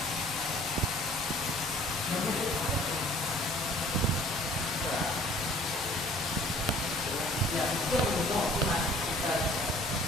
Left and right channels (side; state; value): both; normal; correlation 0.53